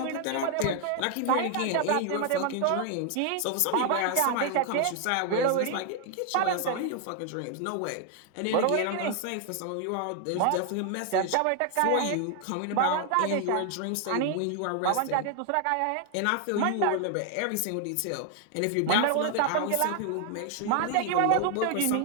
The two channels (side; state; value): both; different; correlation 0.00